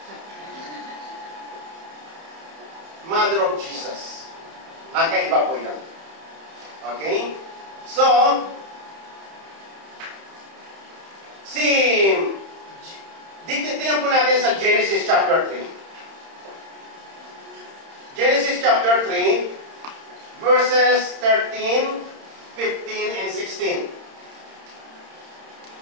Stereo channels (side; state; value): left; late; 31 ms